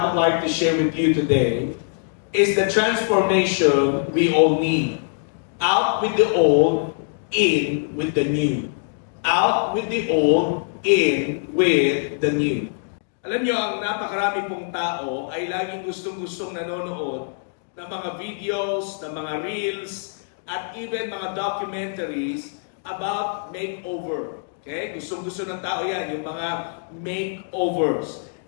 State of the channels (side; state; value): right; silent; digital silence